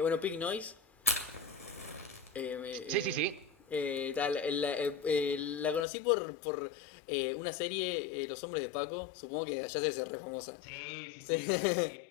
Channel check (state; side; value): drops out; right; at 5.9 s